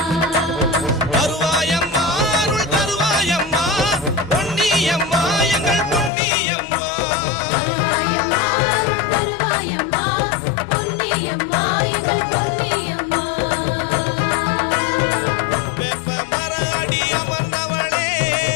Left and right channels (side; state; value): right; drops out; at 6.1 s